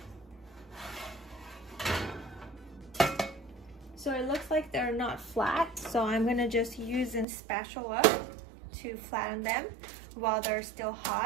So it looks like they're not flat, so I'm gonna just use a spatula to flatten them while they're still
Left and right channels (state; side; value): drops out; left; at 7.2 s